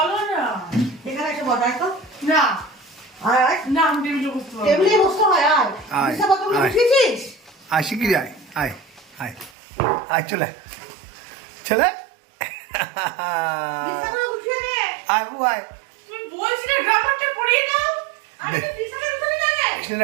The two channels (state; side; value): drops out; left; at 9.5 s